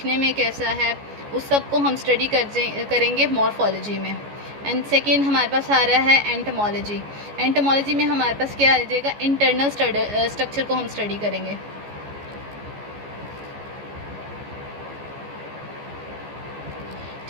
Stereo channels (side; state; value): left; late; 14 ms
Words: में कैसा है, उस सब को हम स्टडी करेंगे मॉर्फोलॉजी में. एंड सेकेंड हमारे पास आ रहा है एंटोमोलॉजी. एंटोमोलॉजी में हमारे पास क्या आ जाएगा, इंटरनल स्ट्रक्चर को हम स्टडी करेंगे.